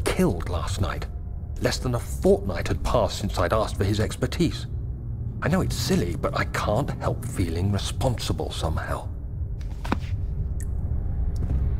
last night. Less than a fortnight had passed since I'd asked for his expertise. I know it's silly, but I can't help feeling responsible somehow.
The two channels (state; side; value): identical; both; correlation 1.00